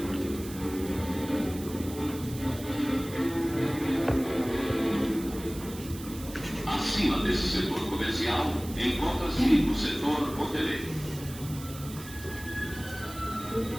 Acima desse setor comercial, encontra-se o setor hoteleiro.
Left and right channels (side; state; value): right; noise; hiss, 15 dB below the sound